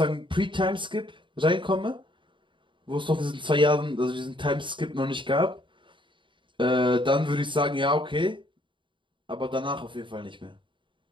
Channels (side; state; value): left; late; 0.24 ms